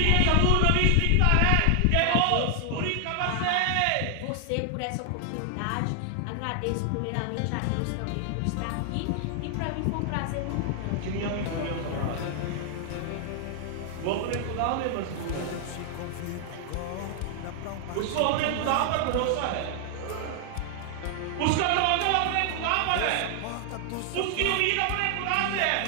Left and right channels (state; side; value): different; both; correlation 0.00